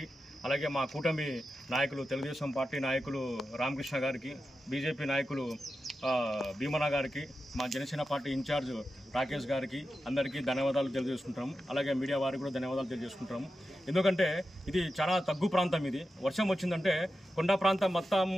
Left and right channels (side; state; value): both; normal; correlation 0.91